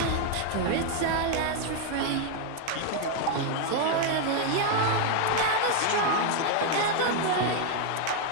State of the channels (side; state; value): both; different; correlation 0.01